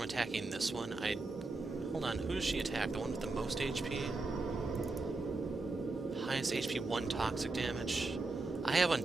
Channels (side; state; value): left; quieter; 3.4 dB